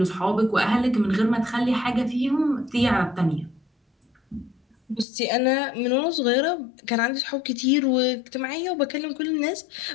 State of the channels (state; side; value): drops out; right; at 5.1 s